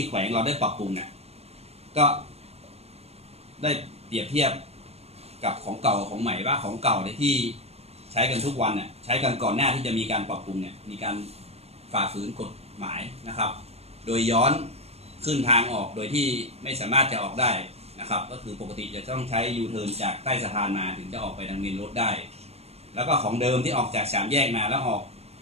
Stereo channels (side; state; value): left; late; 0.30 ms